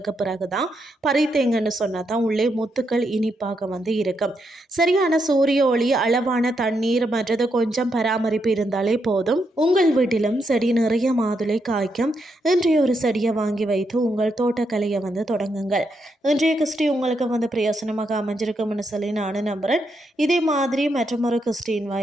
பிறகு தான் பறித்தேங்கன்னு சொன்னால் தான் உள்ளே முத்துக்கள் இனிப்பாக இருக்கும். சரியான சூரிய ஒளி, அளவான தண்ணீர் மற்றது கொஞ்சம் பராமரிப்பு இருந்தாலே போதும். உங்கள் வீட்டிலும் செடி நிறைய மாதுளை காய்க்கும். இன்றைய ஒரு செடியை வாங்கி வைத்து உங்கள் தோட்டக்கலையை தொடங்குங்கள். இன்றைய கிறிஸ்டி உங்களுக்கு பிரயோசனமாக அமைஞ்சிருக்கும்னு சொல்லி நானும் நம்புகிறேன். இதே மாதிரி மற்றொரு கிறிஸ்டின்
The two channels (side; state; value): both; normal; correlation 0.81